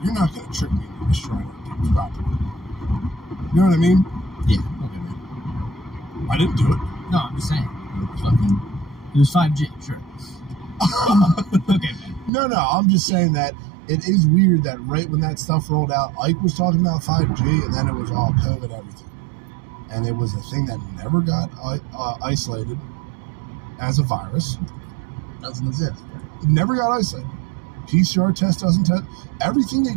You're not gonna trick me into destroying people's property. You know what I mean? Yeah. Okay, man. I didn't do it. No, I'm just saying. It was 5G, sure. Okay, man. No, I'm just saying that it is weird that right when that stuff rolled out, Ike was talking about 5G, and then it was all COVID everything. And it was a thing that never got isolated as a virus. Doesn't exist. It never got isolated. PCR test doesn't test. Everything they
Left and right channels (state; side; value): drops out; left; at 12.3 s